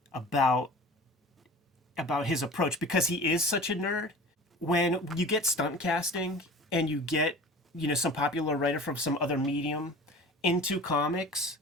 about his approach, because he is such a nerd, when you get stunt casting and you get some popular writer from some other medium into comics,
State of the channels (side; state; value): both; normal; correlation 0.39